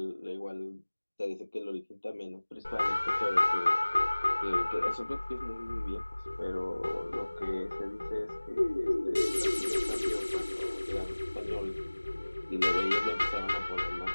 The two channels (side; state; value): both; inverted; correlation -1.00